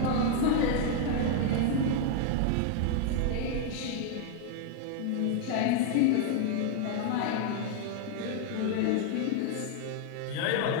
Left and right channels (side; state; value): both; different; correlation 0.00